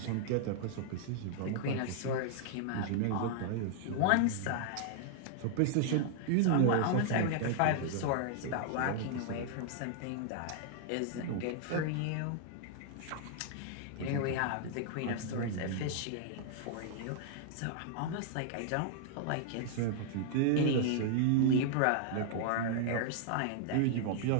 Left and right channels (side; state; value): both; different; correlation -0.01